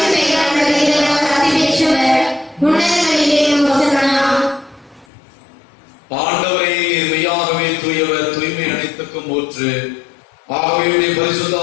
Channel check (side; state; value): right; drops out; at 5.1 s